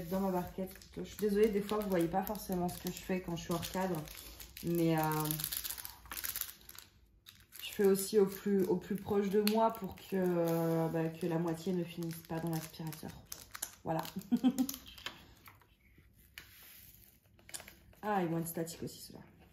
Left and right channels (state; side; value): identical; both; correlation 1.00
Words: être dans ma barquette. Je suis désolée, des fois, vous voyez pas forcément ce que je fais quand je suis hors cadre. Mais je fais aussi au plus proche de moi pour que la moitié ne finisse pas dans l'aspirateur. Voilà. Ah, ils vont être statiques aussi, ceux-là.